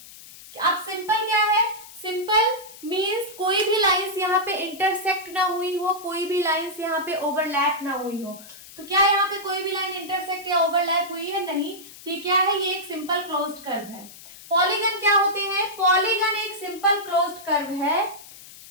अब सिंपल क्या है? सिंपल मींस कोई भी लाइंस यहाँ पे इंटरसेक्ट ना हुई हो, कोई भी लाइंस यहाँ पे ओवरलैप ना हुई हो। तो क्या यहाँ पे कोई भी लाइन इंटरसेक्ट या ओवरलैप हुई है? नहीं। ये क्या है? ये एक सिंपल क्लोज्ड कर्व है। पॉलीगन क्या होते हैं? पॉलीगन एक सिंपल क्लोज्ड कर्व है।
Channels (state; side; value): noise; left; hiss, 18 dB below the sound